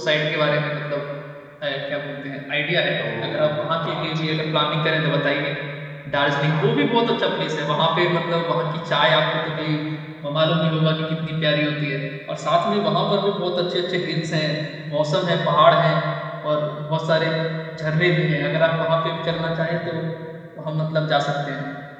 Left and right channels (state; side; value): identical; both; correlation 1.00